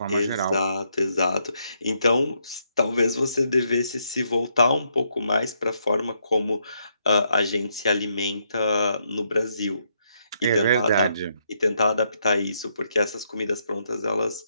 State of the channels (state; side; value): inverted; both; correlation -0.76